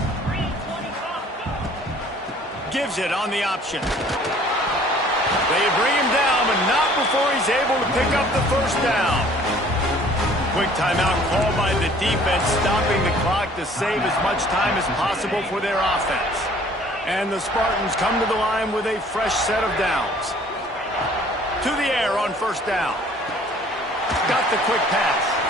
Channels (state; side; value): normal; both; correlation 0.54